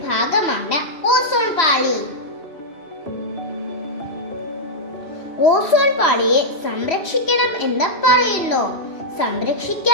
ഭാഗമാണ് ഓസോൺ പാളി. ഓസോൺ പാളിയെ സംരക്ഷിക്കണം എന്ന് പറയുന്നു.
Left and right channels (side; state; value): right; late; 3.1 ms